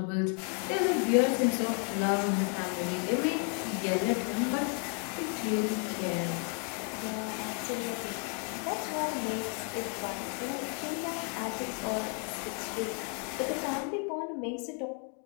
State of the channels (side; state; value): right; quieter; 38.3 dB